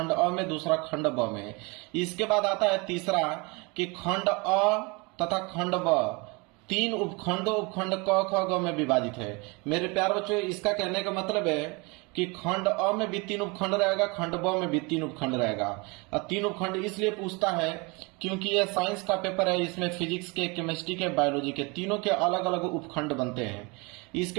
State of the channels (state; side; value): quieter; left; 28.1 dB